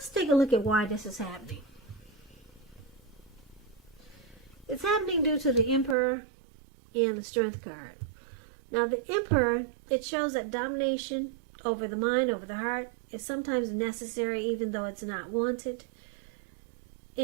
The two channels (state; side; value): drops out; left; at 6.0 s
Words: take a look at why this is happening. It's happening due to the Emperor and the Strength card. Now, the Emperor, it shows that domination over the mind, over the heart, is sometimes necessary even though it's not wanted.